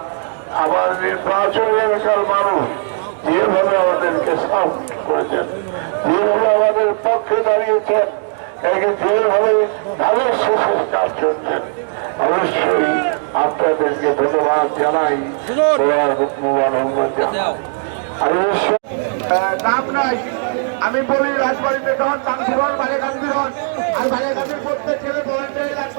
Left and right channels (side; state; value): left; silent; digital silence